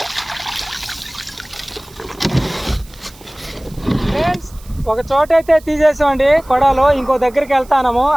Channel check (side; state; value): right; noise; hiss, 24 dB below the sound